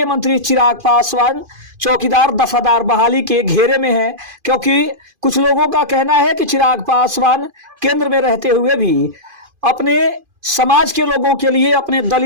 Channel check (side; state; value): left; late; 2.5 ms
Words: मंत्री चिराग पासवान चौकीदार दफादार बहाली के घेरे में हैं, क्योंकि कुछ लोगों का कहना है कि चिराग पासवान केंद्र में रहते हुए भी अपने समाज के लोगों के लिए, अपने